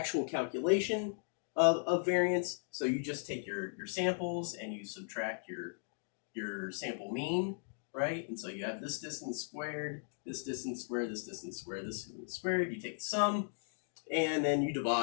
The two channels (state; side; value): silent; right; digital silence